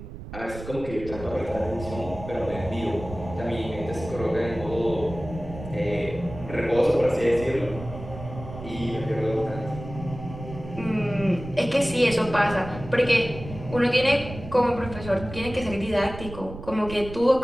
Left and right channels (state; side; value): noise; right; rumble, 12 dB below the sound